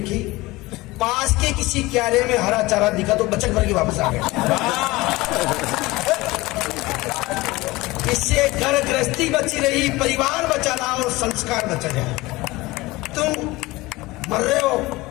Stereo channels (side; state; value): right; quieter; 20.6 dB